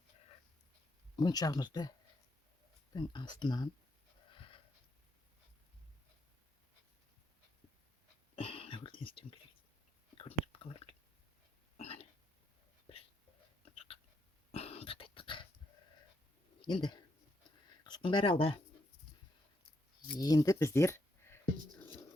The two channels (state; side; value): normal; both; correlation 0.79